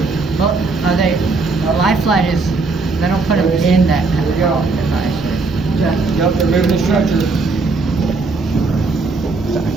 Well, are they? A life flight is. They don't put them in that. Here we go. Device. Yep, they're moving the stretcher.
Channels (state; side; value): quieter; left; 3.9 dB